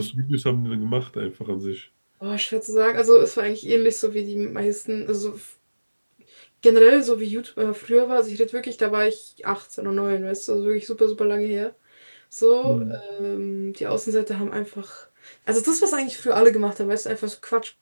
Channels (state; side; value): inverted; both; correlation -1.00